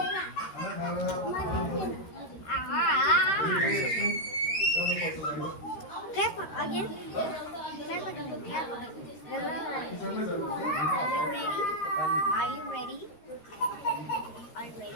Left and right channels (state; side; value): late; right; 13 ms